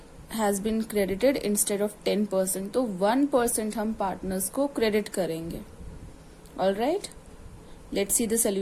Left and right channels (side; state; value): both; identical; correlation 1.00